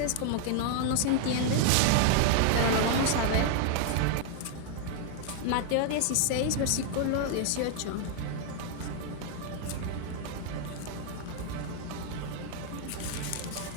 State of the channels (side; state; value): both; different; correlation 0.00